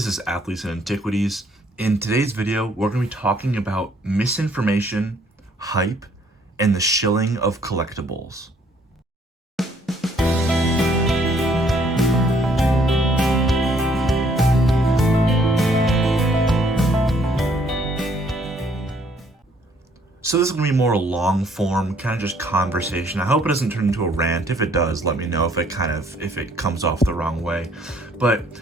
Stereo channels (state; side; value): normal; both; correlation 0.64